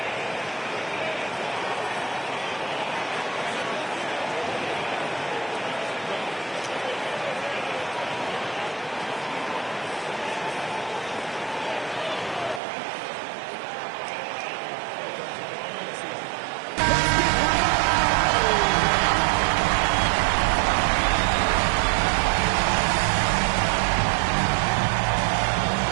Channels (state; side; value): drops out; left; at 12.6 s